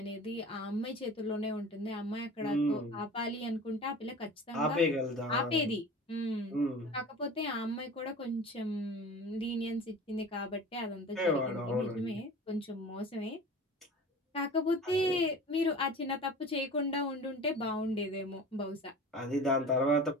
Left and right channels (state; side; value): normal; both; correlation 0.38